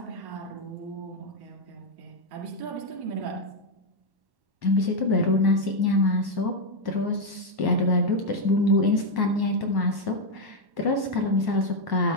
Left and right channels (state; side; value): late; left; 1.1 ms